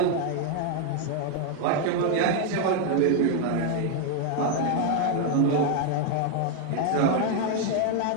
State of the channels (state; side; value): different; both; correlation 0.01